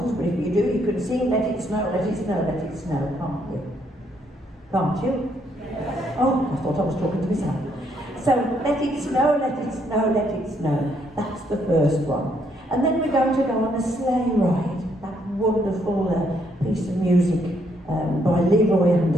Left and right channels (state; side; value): normal; both; correlation 0.72